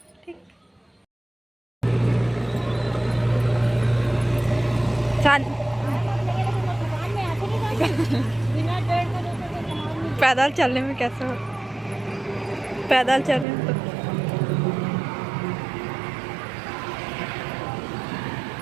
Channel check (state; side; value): drops out; left; at 13.5 s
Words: ठीक। पैदल चलने में कैसे हो, पैदल चलने में तो